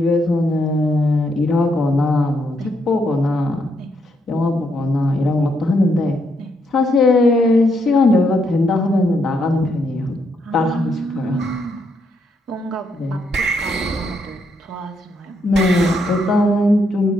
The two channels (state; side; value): normal; both; correlation 0.77